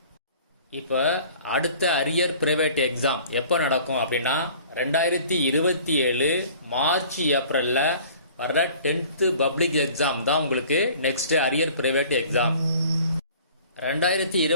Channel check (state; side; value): inverted; both; correlation -0.49